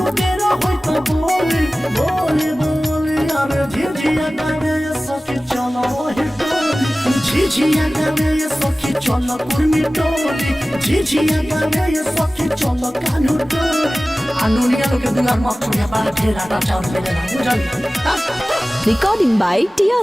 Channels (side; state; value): both; normal; correlation 0.97